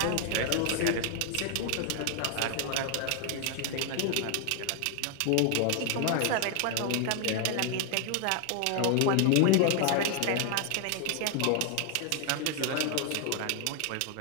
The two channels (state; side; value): different; both; correlation 0.00